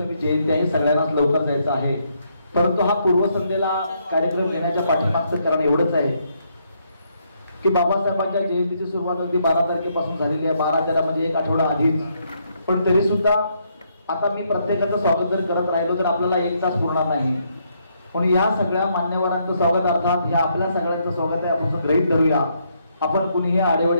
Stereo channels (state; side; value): inverted; both; correlation -0.74